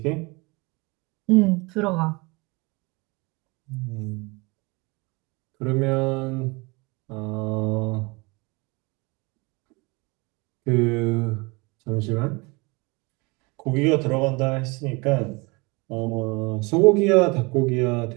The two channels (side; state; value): left; quieter; 26.2 dB